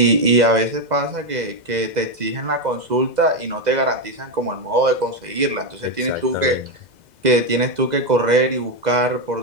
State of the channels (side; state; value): left; late; 2.0 ms